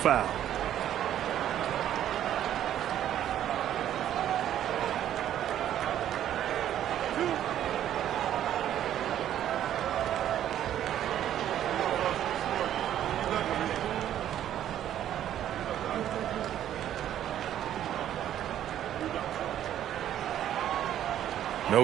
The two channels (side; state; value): left; quieter; 11.2 dB